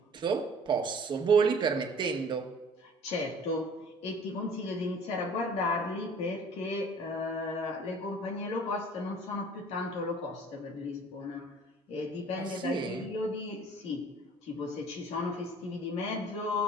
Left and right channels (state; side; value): normal; both; correlation 0.49